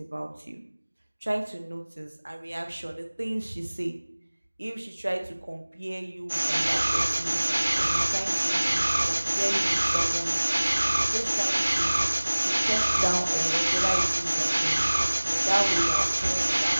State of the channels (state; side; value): inverted; both; correlation -1.00